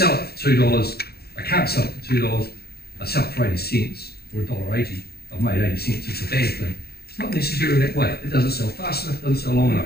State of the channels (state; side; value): late; right; 0.46 ms